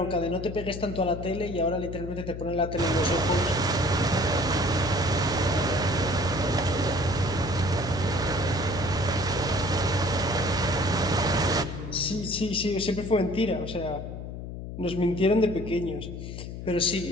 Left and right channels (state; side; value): noise; left; hum, 8 dB below the sound